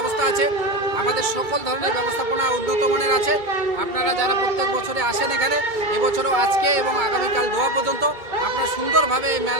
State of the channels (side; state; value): left; late; 2.2 ms